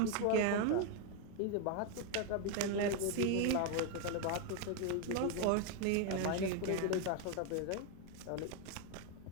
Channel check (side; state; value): both; different; correlation 0.01